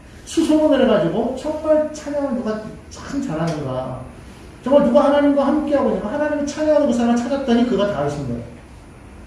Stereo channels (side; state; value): both; identical; correlation 1.00